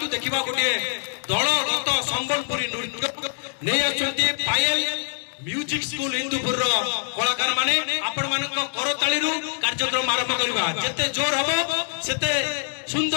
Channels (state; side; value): silent; right; digital silence